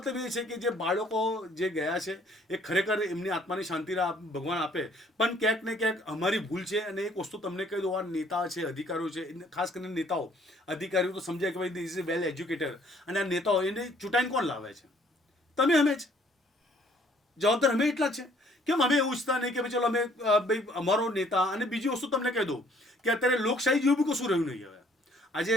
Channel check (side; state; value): both; normal; correlation 0.61